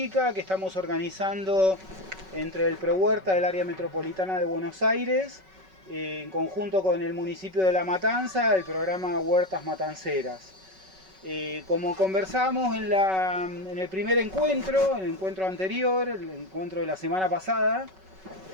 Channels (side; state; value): left; late; 5.3 ms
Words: que estamos organizando entre el ProHuerta del área metropolitana de Buenos Aires, en conjunto con el municipio de La Matanza, el programa Huertas Matanceras. Como conversamos en el primer encuentro, el encuentro anterior, el encuentro de la semana pasada,